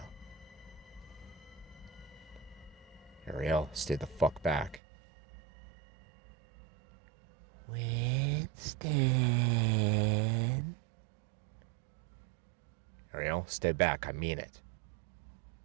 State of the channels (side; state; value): left; drops out; at 4.8 s